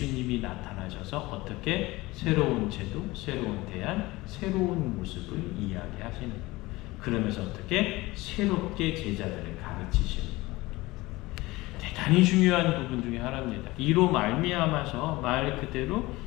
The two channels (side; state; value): right; quieter; 20.5 dB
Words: 나타나셔서 어떻게 새로운 제도, 새로운 대안, 새로운 모습을 이야기하시는 거예요. 그러면서 어떻게 새롭게 제자들을 가르치시는 거예요. 대단히 중요한 부분 중에 하나입니다. 이로 말미암아서 말 그대로